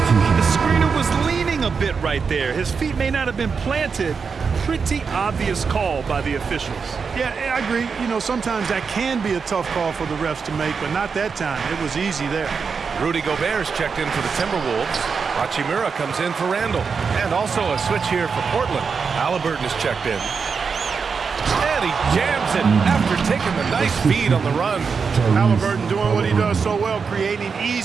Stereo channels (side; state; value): left; quieter; 5.6 dB